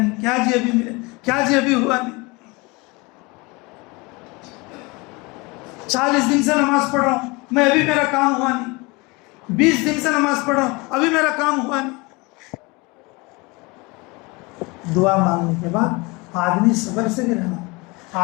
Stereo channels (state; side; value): quieter; right; 25.9 dB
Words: کیا جی ابھی ملا، کیا جی ابھی ہوا نہیں. 40 دن سے نماز پڑھ رہا ہوں میں، ابھی میرا کام ہوا نہیں. 20 دن سے نماز پڑھ رہا ہوں ابھی میرا کام ہوا نہیں. دعا مانگنے کے بعد آدمی صبر سے بھی رہنا،